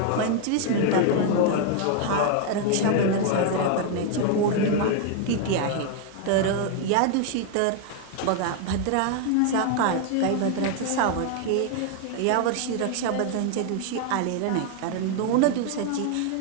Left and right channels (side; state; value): both; different; correlation 0.00